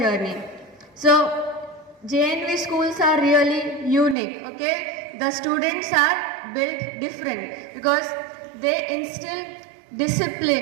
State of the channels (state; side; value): drops out; left; at 4.2 s